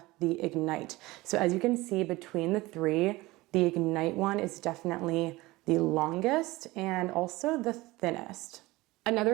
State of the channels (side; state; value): left; quieter; 20.2 dB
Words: the Ignite. So as you can see between the three, the Ignite one is definitely the longest and also the thinnest.